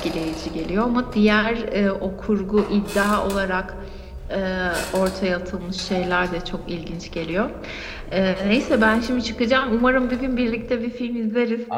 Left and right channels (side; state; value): both; identical; correlation 1.00